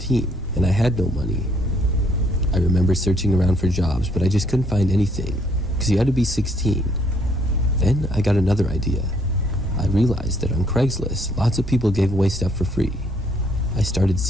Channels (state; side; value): normal; both; correlation 0.66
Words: and I had no money. I remember searching around for jobs, but I just couldn't find anything, because you had to be 16. Then I got another idea. I realized that on Craigslist, lots of people gave away stuff for free. I started